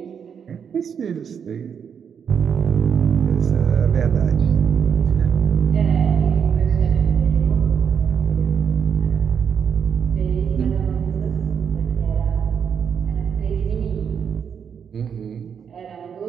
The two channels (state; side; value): quieter; left; 7.3 dB